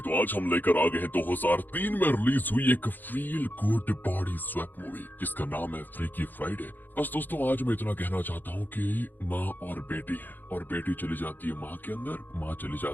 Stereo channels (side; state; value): right; late; 0.089 ms